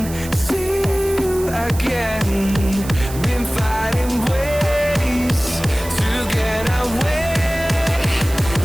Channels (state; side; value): noise; right; hiss, 14 dB below the sound